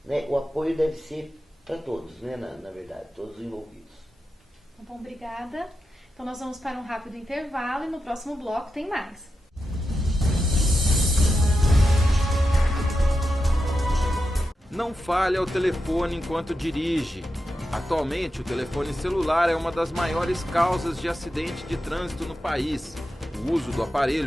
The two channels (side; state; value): both; normal; correlation 0.89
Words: né. O apoio deve ser para todos, né, na verdade, todos os envolvidos. Tá bom, obrigada. Então nós vamos para um rápido intervalo e no próximo bloco tem mais. Não fale ao telefone enquanto dirige. Atualmente, o telefone celular é uma das maiores causas de acidente de trânsito no país. O uso do